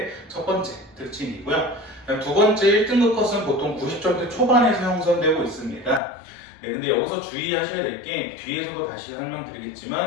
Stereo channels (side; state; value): right; drops out; at 6.0 s